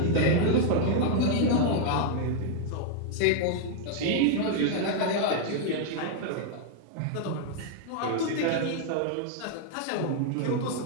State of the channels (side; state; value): both; different; correlation 0.00